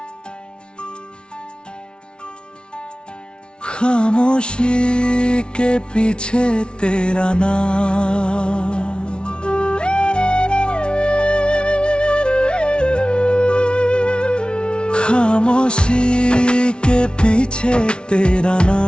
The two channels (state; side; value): late; right; 0.056 ms